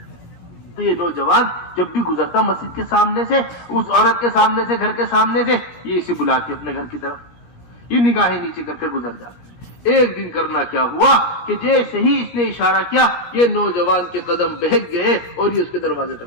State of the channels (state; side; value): late; right; 17 ms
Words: تو یہ نوجوان جب بھی گزرتا مسجد کے سامنے سے، اس عورت کے سامنے سے، گھر کے سامنے سے، یہ اسے بلا کے اپنے گھر کی طرف یہ نگاہیں نیچے کر کر گزر جاتا۔ ایک دن کرنا کیا ہوا کہ جیسے ہی اس نے اشارہ کیا، یہ نوجوان کے قدم بہک گئے اور یہ اس کے دروازے